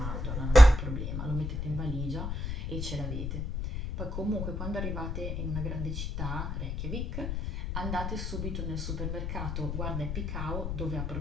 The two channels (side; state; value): left; noise; rumble, 4 dB below the sound